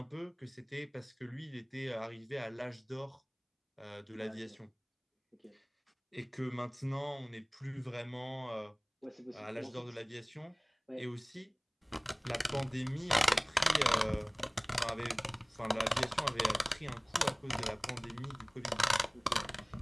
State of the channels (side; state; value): both; identical; correlation 1.00